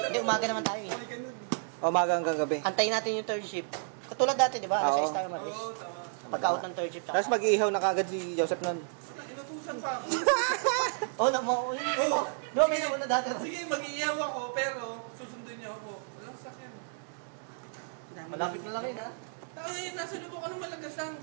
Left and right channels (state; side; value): silent; left; digital silence